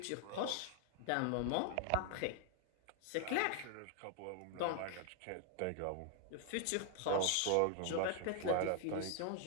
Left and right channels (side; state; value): both; different; correlation 0.00